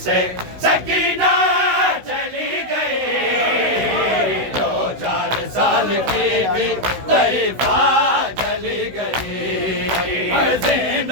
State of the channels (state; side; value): late; left; 16 ms